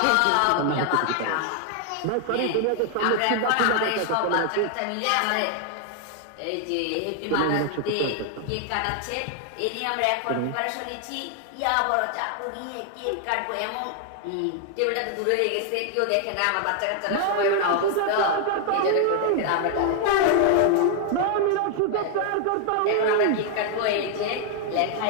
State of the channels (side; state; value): both; different; correlation 0.00